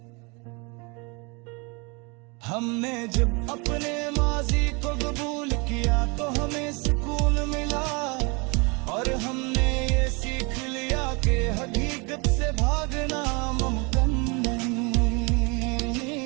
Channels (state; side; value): quieter; left; 29.9 dB